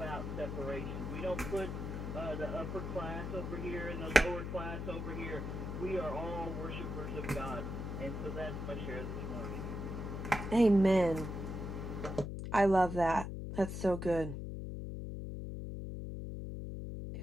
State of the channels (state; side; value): noise; left; hum, 5 dB below the sound